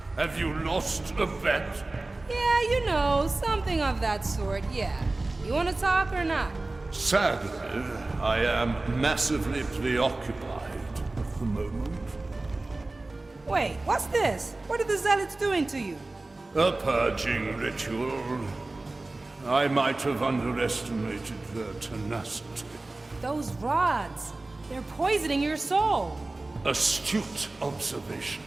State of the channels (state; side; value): quieter; left; 3.0 dB